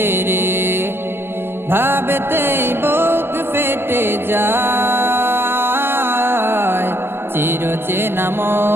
ভাবতেই বুক ফেটে যায়। চিরচেনা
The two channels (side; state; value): left; late; 0.11 ms